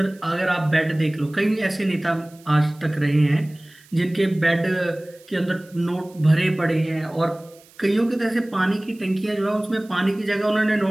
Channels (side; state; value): right; noise; hiss, 27 dB below the sound